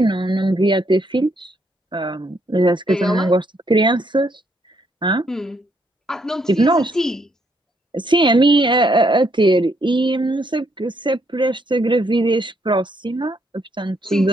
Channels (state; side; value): normal; both; correlation 0.73